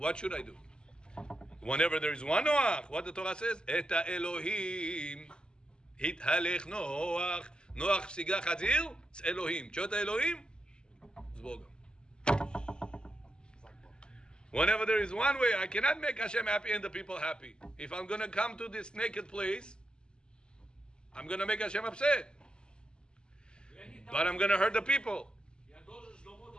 should I do? Whenever there is one Noach, what the Torah says, את האלוהים התהלך נוח. נוח פסיגה חזיר, זה אלוהים. תשאול את האלוהים, זה בוגם. Whenever there is one way, I cannot make Hashem happy and the people happy. If I'm going to come to this naked place, I'm going to make Hashem upset. But I'm going to hurt the people. Я должен с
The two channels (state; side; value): late; right; 0.048 ms